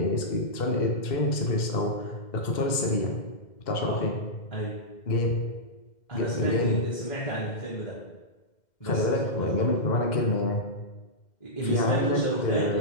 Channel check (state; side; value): late; right; 2.1 ms